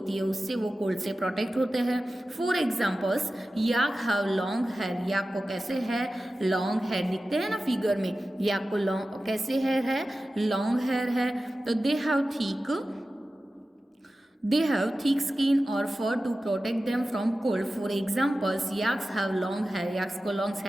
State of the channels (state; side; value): normal; both; correlation 0.94